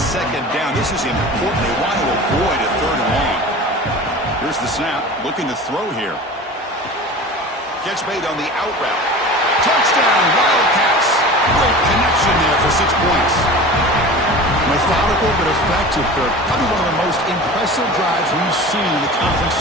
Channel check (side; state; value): both; normal; correlation 0.36